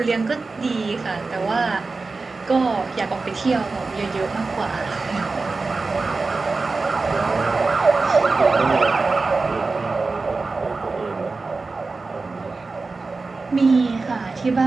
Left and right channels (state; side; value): quieter; left; 3.9 dB